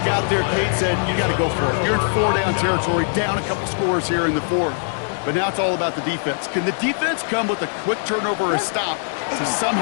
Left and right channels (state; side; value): silent; right; digital silence